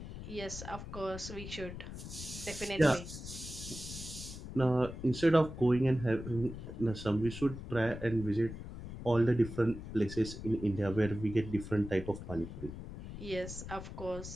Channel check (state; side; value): noise; left; rumble, 10 dB below the sound